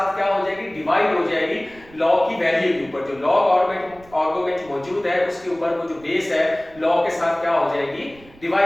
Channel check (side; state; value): right; noise; rumble, 24 dB below the sound